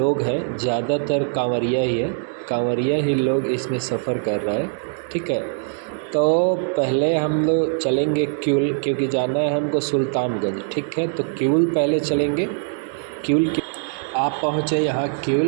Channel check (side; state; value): left; silent; digital silence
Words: हैं ज़्यादातर कांवरिया ही है, कांवरिया ही लोग इसमें सफ़र कर रहा है। ठीक है, तो पहले हम लोग चलेंगे क्यूल, क्योंकि जाना है हमको सुल्तानगंज। ठीक है, तो क्यूल पहले चलेंगे। क्यूल आप पहुँचे यहाँ